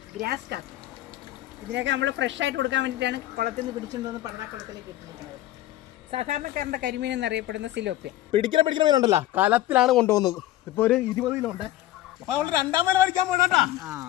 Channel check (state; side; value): quieter; right; 14.7 dB